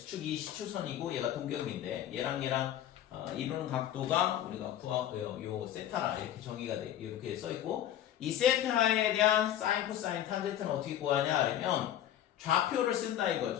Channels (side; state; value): right; quieter; 11.5 dB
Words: 시초선이고 얘가 동경인데 얘랑 이루는 각도가 우리가 요 세타라 이렇게 정의가 돼 이렇게 써 있고 이 세타에 대한 사인, 코사인, 탄젠트는 어떻게 구하냐 하면 좌표를 쓴다